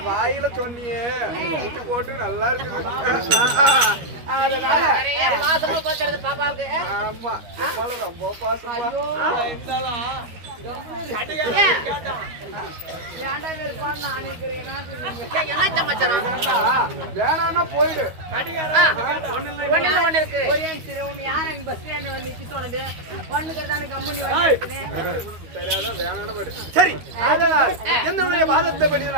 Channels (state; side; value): late; left; 13 ms